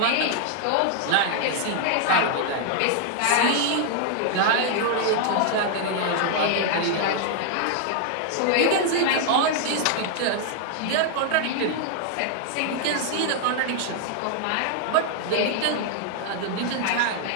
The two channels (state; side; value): different; both; correlation 0.00